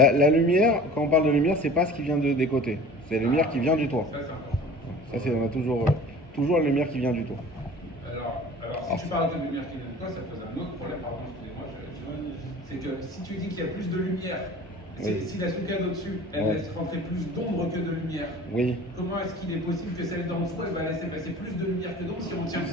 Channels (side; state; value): both; normal; correlation 0.43